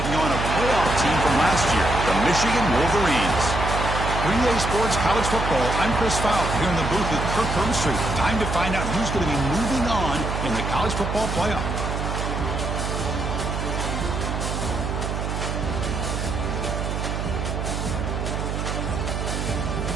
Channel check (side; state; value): right; noise; hum, 3 dB below the sound